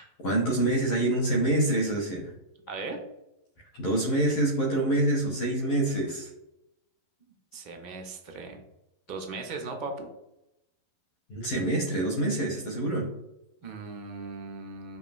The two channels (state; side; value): late; right; 11 ms